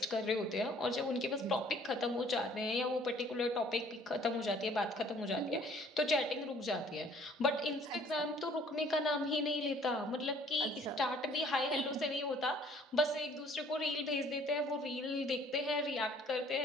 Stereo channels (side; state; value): both; normal; correlation 0.57